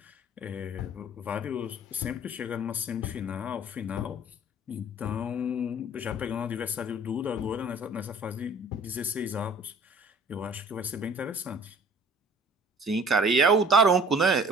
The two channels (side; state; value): both; normal; correlation 0.50